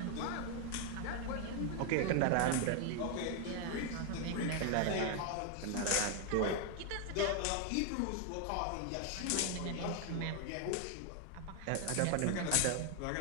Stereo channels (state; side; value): different; both; correlation 0.01